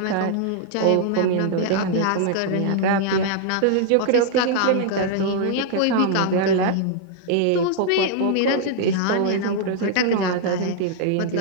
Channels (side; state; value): both; different; correlation 0.00